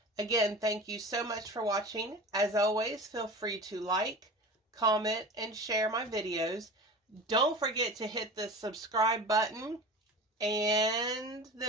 Again, thank you so much for watching. As always, feel free to like, comment, and share my videos. Don't forget to hit the subscribe button and the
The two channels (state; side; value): normal; both; correlation 0.34